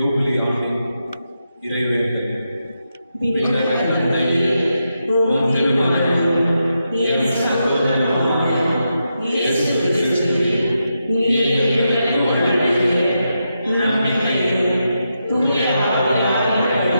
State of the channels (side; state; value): both; inverted; correlation -0.85